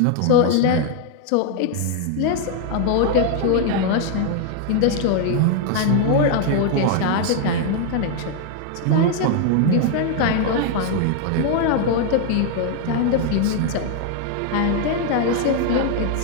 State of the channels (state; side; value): different; both; correlation 0.00